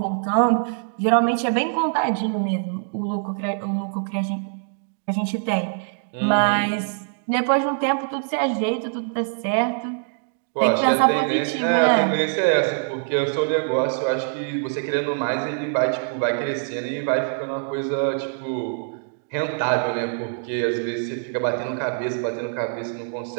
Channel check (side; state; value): left; silent; digital silence